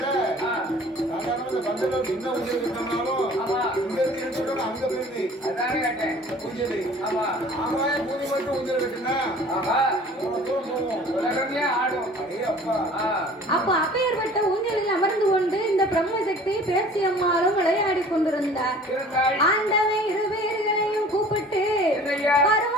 அப்ப அப்பேற்பட்ட ஊஞ்சலில் அமர்ந்து கொண்டு இந்த பிரம்மசக்தி பேச்சி அம்மாளும் விளையாடி கொண்டிருந்தார். ஆண்டவன் இரு பேர்களையும் கூப்பிட்டு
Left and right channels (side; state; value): both; normal; correlation 0.48